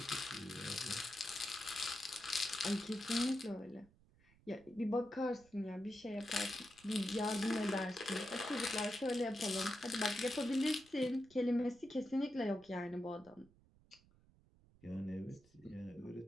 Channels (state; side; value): noise; right; rumble, 28 dB below the sound